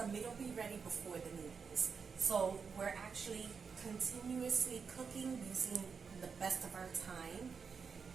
meat will be ready before the noodles. So we're actually continuously cooking using the best of our time,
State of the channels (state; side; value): quieter; left; 5.7 dB